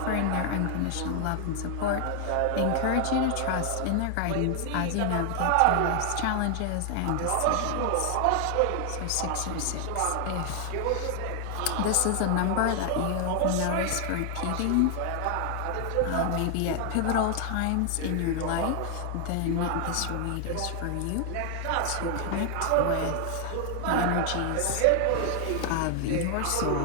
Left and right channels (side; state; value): both; different; correlation 0.00